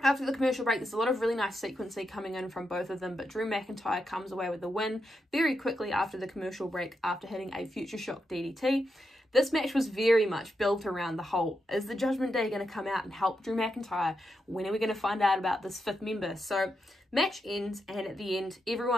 After the commercial break, there's a lot of really nice sequencing coming in from both of them, but Drew McIntyre comes away with the win very quickly after the commercial break after hitting a Future Shock DDT. This match was very much built around the whole, is the Judgment Day going to come out and help Drew McIntyre? When are we going to find out about this fifth member? So match ends, and at the end,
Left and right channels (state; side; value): normal; both; correlation 0.85